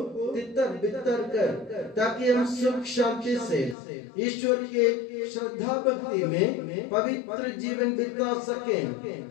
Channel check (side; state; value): right; drops out; at 3.8 s